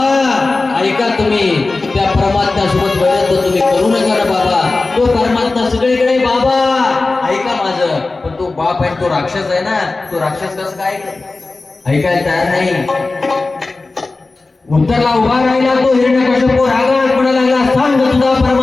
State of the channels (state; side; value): quieter; right; 3.5 dB